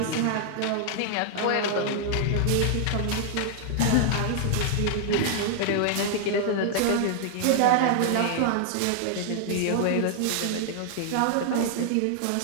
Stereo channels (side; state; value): both; different; correlation 0.00